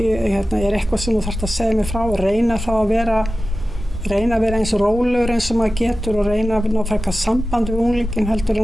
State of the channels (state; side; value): normal; both; correlation 0.95